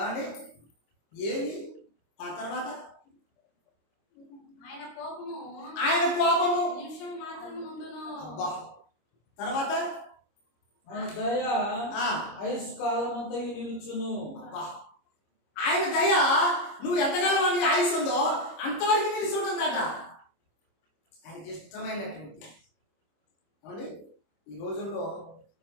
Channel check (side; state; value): right; late; 26 ms